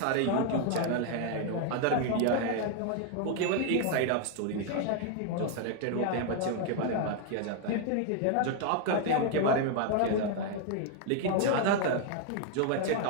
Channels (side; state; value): both; different; correlation 0.00